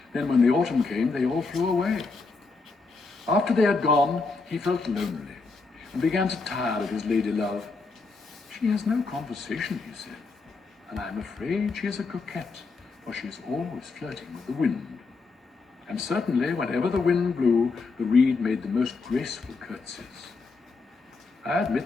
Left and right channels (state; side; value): quieter; right; 4.1 dB